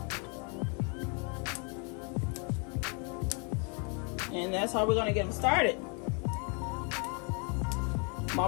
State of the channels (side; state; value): right; quieter; 36.3 dB